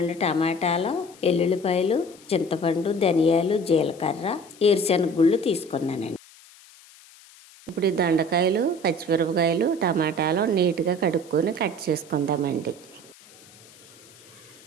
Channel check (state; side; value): noise; left; hiss, 24 dB below the sound